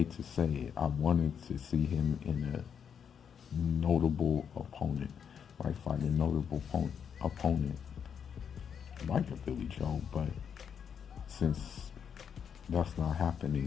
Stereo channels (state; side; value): quieter; right; 7.5 dB